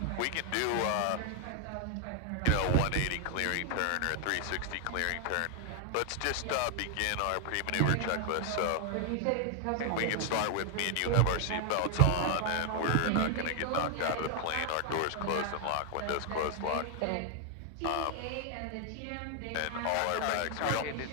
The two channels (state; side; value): different; both; correlation 0.00